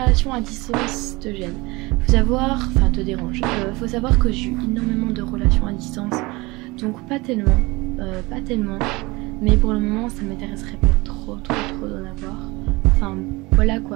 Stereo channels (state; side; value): quieter; left; 23.2 dB